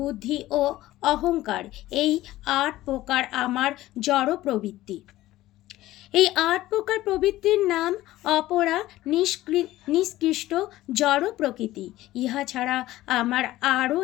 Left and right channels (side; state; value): right; quieter; 15.9 dB